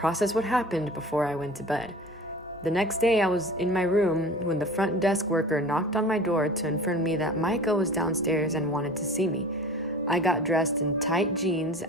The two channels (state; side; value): normal; both; correlation 0.40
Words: what happened before I went to bed. The next day, I was in my room when the front desk worker knocked on my door to inform me that Micah was downstairs and wanted to see me. I got dressed in tight jeans